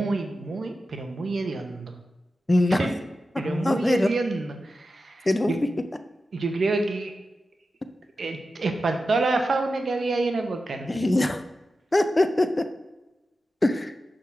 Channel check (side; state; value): both; normal; correlation 0.92